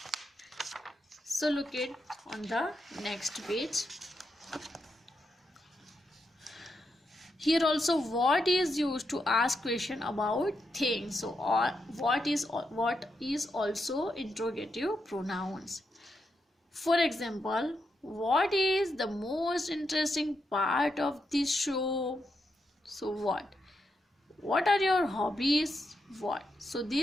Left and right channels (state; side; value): normal; both; correlation 0.84